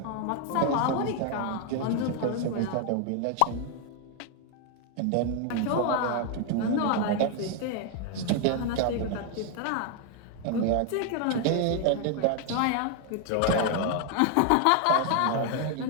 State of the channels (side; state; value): both; different; correlation 0.01